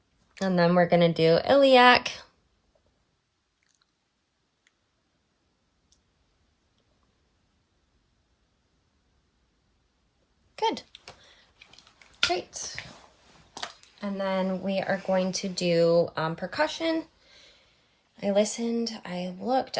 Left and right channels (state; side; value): identical; both; correlation 1.00